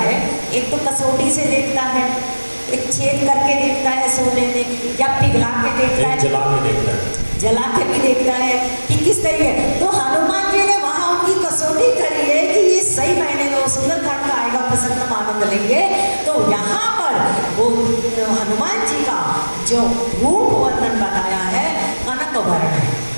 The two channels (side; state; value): both; inverted; correlation -1.00